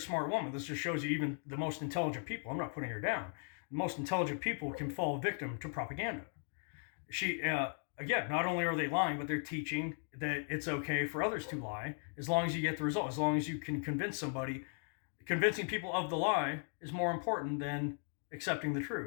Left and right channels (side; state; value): right; silent; 53 dB below the other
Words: woman. This just shows you even the most intelligent people, I'm not putting her down, the most intelligent people can fall victim to propaganda. again, not only are they lying, but they're teaching that it's okay for others to lie as long as you get the result, as long as you can convince somebody. Convincing people of the lie is more important than accepting the